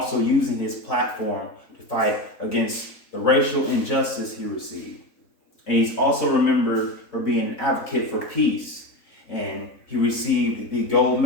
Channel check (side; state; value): right; late; 3.9 ms